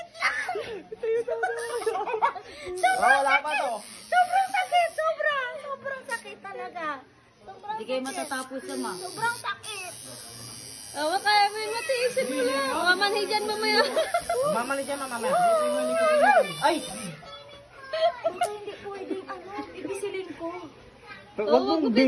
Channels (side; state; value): both; identical; correlation 1.00